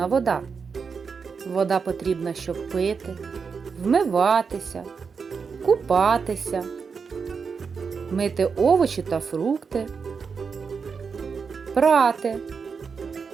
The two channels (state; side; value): quieter; left; 5.6 dB